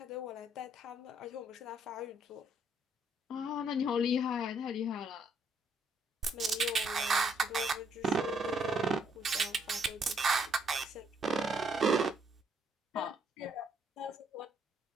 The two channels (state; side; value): normal; both; correlation 0.69